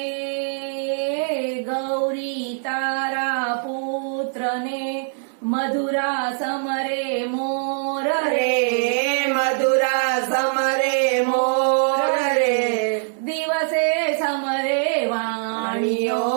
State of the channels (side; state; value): left; silent; digital silence